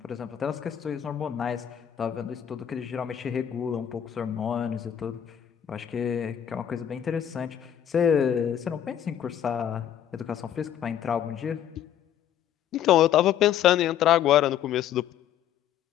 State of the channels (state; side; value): quieter; right; 10.1 dB